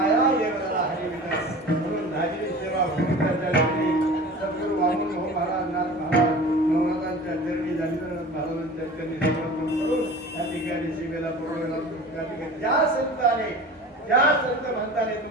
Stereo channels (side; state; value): both; normal; correlation 0.38